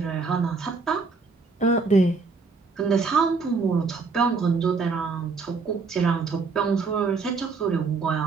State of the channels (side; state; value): left; quieter; 4.5 dB